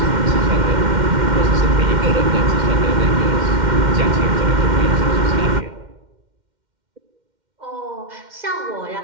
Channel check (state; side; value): late; left; 2.1 ms